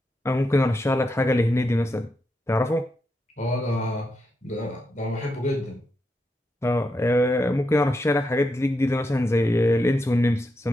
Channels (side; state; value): both; normal; correlation 0.84